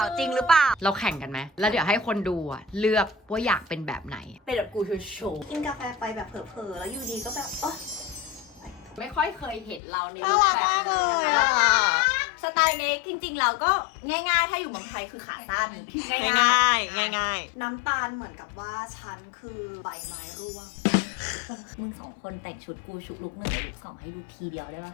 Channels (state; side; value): drops out; right; at 9.8 s